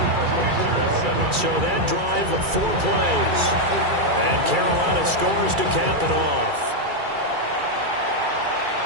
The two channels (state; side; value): late; left; 2.3 ms